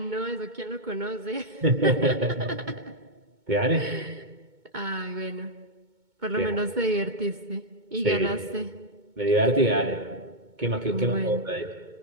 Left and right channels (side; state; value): left; late; 2.2 ms